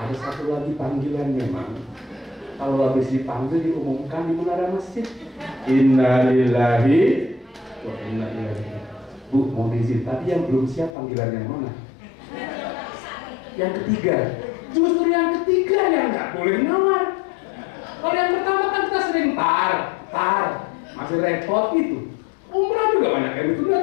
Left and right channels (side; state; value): right; drops out; at 10.9 s